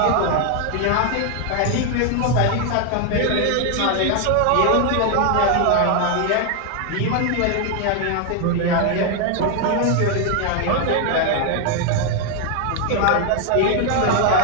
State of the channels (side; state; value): both; different; correlation 0.00